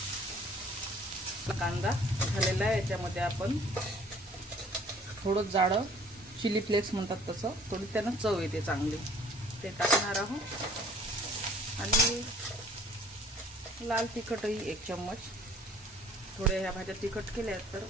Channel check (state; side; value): normal; both; correlation 0.54